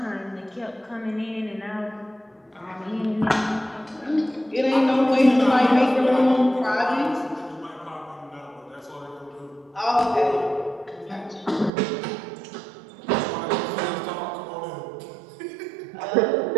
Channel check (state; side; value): drops out; left; at 11.7 s